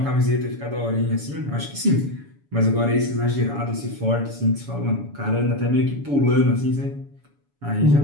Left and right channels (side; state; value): left; late; 7.0 ms